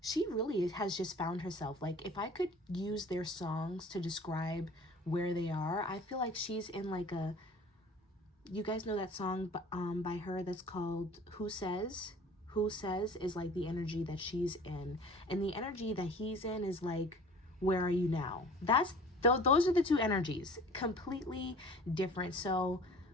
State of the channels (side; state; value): both; normal; correlation 0.46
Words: really has just found herself. Like if I could use their songs to describe where they are, I feel like she's in like a, you guys know that song by her that's called Who Says? Who Says is like the energy that she's in, and the energy that he's in is like, where are you now? That's those are the two energies, completely different. So